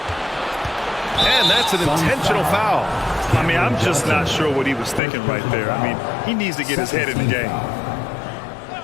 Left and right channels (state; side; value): drops out; right; at 5.0 s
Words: And that's an intentional foul. I mean, I'm just not sure what he was thinking right there. I mean, he needs to get his head in the game.